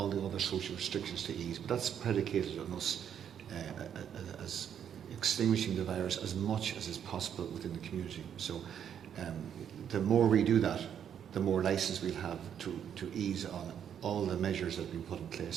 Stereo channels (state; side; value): quieter; left; 8.8 dB